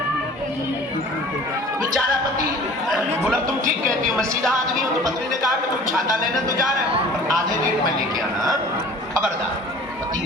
बेचारा पति बोला तुम ठीक कहती हो, मैं सीधा आदमी हूँ। तो पत्नी ने कहा कि तुम छाता लेने तो जा रहे हो, पर आधे रेट में लेके आना, खबरदार। पति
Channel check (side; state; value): both; normal; correlation 0.46